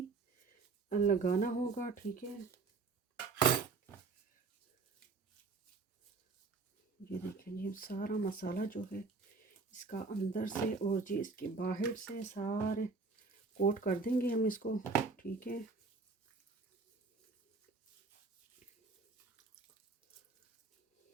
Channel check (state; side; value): quieter; left; 4.2 dB